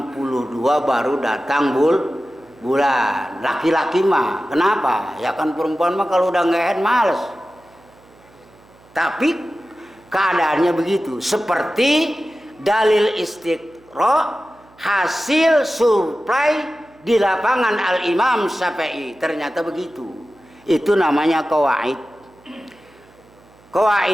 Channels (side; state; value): right; noise; hum, 28 dB below the sound